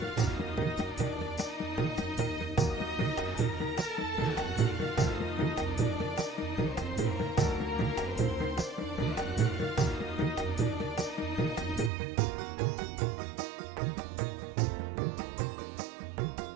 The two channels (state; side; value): drops out; left; at 11.9 s